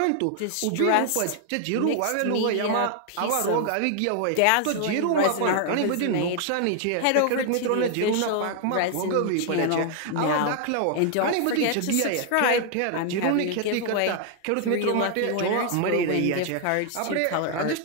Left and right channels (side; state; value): both; different; correlation 0.00